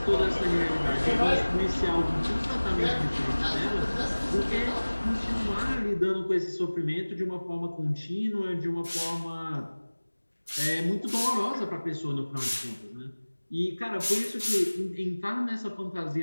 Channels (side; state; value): both; inverted; correlation -1.00